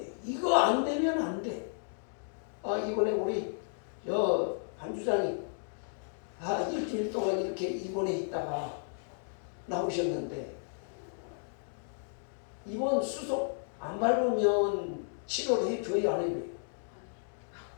이거 안 되면 안 돼. 이번에 우리 반 주장이 일주일 동안 이렇게 입원해 있다가 나오셨는데 입원 수속 안 밟으면 치료를 해줘야 안 해줘요?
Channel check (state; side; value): silent; right; digital silence